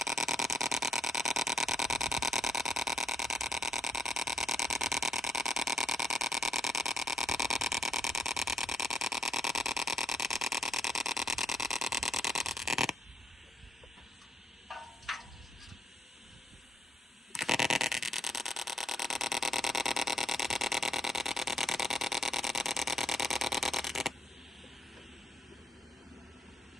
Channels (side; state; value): both; normal; correlation 0.72